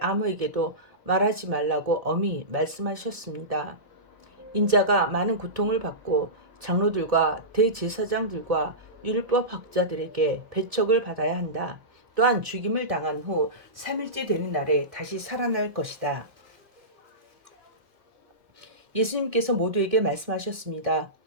말하지 말라고 엄히 말씀하셨습니다. 인자가 많은 고통을 받고 장로들과 대제사장들과 율법학자들에게 배척을 받아야 한다. 또한 죽임을 당한 후 3일째 되는 날에 다시 살아날 것이다. 예수님께서 모두에게 말씀하셨습니다.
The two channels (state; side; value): late; left; 1.6 ms